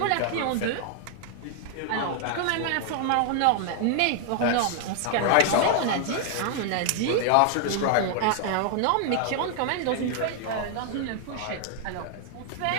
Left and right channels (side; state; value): both; different; correlation 0.00